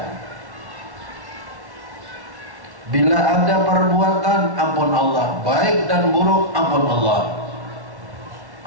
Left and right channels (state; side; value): late; left; 1.1 ms